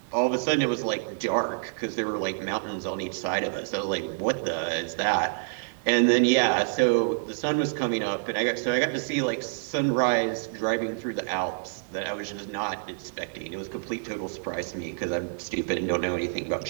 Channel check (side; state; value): left; silent; digital silence